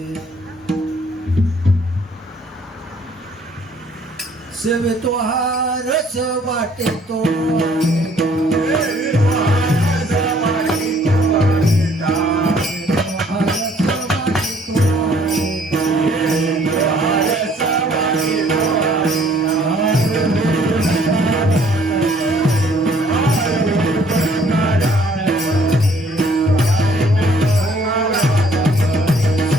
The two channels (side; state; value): both; normal; correlation 0.61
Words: सेवे तो हारच वाटे तो